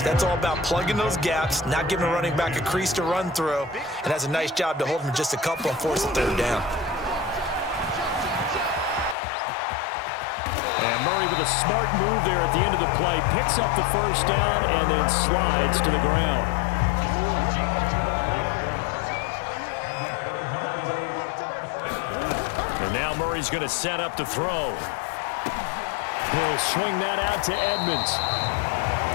all about plugging those gaps, not giving a running back a crease to run through, and has a nice job to hold him just a couple and force the third down. And Murray with a smart move there at the end of the play. Picks up the first down and then slides to the ground. And now Murray's going to set up to throw. He'll swing that out to Edmonds.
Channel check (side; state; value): right; drops out; at 9.2 s